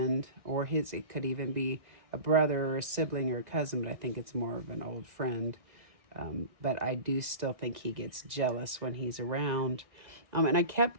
or it could even be a brother or a sibling or a cousin, but I think it's more of an old friend. But I do still think he gets jealous when he's around. And I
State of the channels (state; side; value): late; left; 2.0 ms